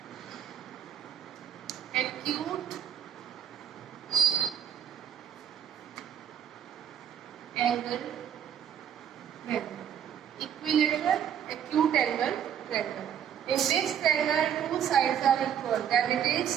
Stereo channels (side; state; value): left; quieter; 9.1 dB